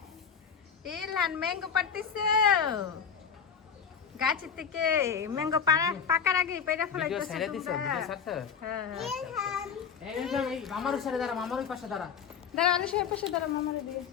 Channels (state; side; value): quieter; right; 6.9 dB